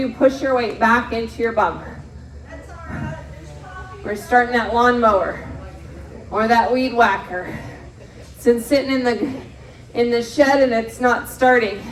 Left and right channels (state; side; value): identical; both; correlation 1.00